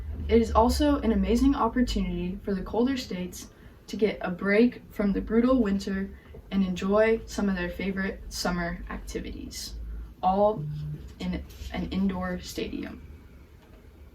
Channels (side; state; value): both; identical; correlation 1.00